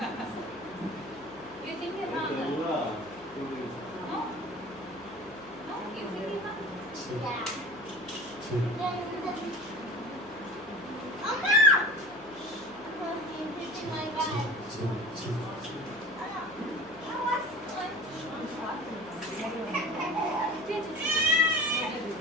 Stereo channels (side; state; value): left; noise; hum, 22 dB below the sound